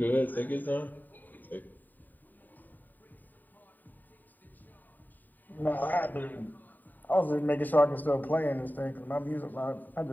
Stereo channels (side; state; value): right; late; 0.088 ms